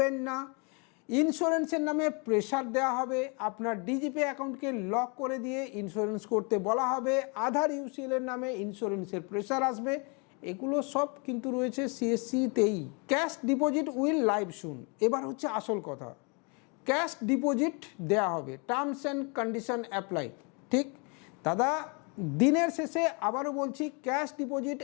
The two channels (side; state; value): right; quieter; 33.5 dB